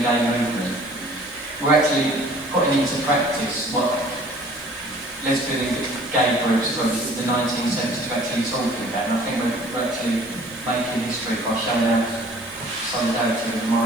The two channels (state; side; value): noise; right; hiss, 23 dB below the sound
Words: gay movement. We're actually putting into practice what lesbian and gay groups from the 1970s are actually talking about, and I think we're actually making history by showing our solidarity with the